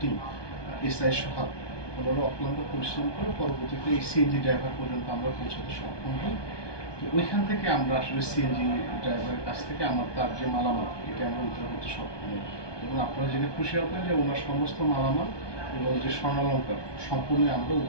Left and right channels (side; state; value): right; late; 1.2 ms